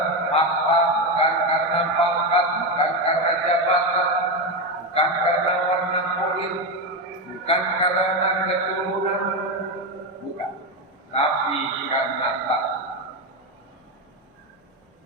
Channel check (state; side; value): normal; both; correlation 0.12